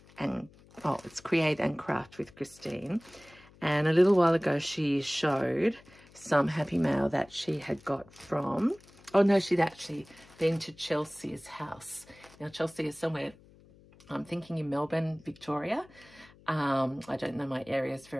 and oh, it's Create and Craft with Christine. And a little while ago, she showed some Happy Mail that she had got from, oh no, she'd actually been to Chelsea's house. Now, Chelsea is somewhere, I'm thinking in Melbourne, Victoria. I don't know my areas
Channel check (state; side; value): noise; left; hum, 25 dB below the sound